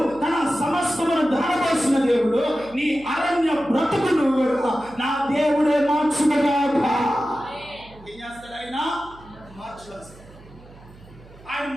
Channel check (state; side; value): noise; right; hum, 22 dB below the sound